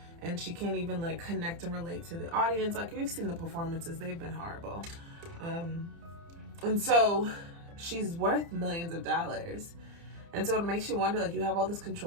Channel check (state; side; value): late; left; 30 ms